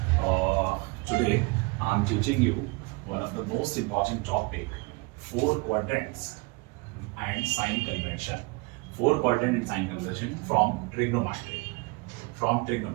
Today, I'm teaching you one of the most important topic, four quadrants and sign convention. Four quadrant and sign convention from trigonometry.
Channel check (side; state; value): left; quieter; 27.4 dB